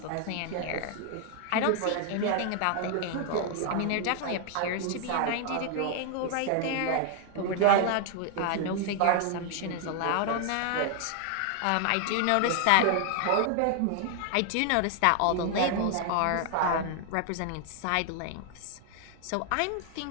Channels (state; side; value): different; both; correlation 0.00